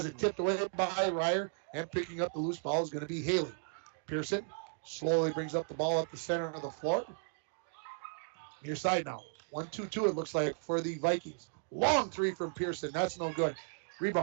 it tipped away by Ryer, and picking up the loose ball is going to be Haley. Pearson slowly brings up the ball up the center of the floor. Near side now. 1-2-2 it looks like for the Vikings. Long 3 from Pearson. That's no good.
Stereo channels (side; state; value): left; silent; digital silence